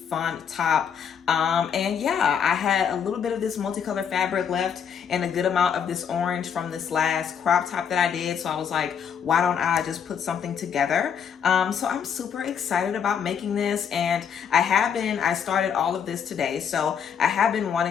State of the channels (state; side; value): quieter; right; 7.5 dB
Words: top. And yeah, I had a little bit of this multicolor fabric left and a good amount of this orange from this last crop top that I did. So I was like, why don't I just put something together? So I'm super excited about making this, and I started all of this today. So I have been